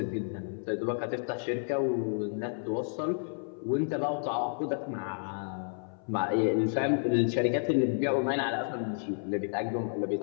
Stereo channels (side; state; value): right; silent; 57 dB below the other